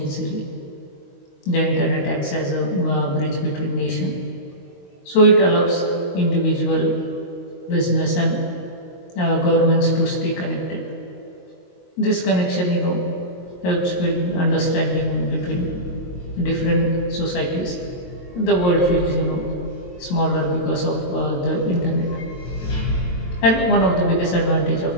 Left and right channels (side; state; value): right; late; 22 ms